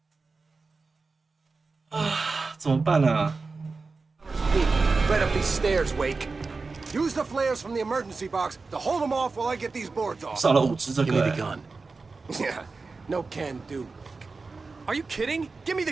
啊，怎么办啊？ Peek. Right up these stairs, Wake. Use the flares from the emergency box to hold them off while I get these boards off. 少了5只这 Give me 个 the 欸。 gun. Yeah, no can do. Are you kidding? Give me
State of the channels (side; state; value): left; quieter; 4.1 dB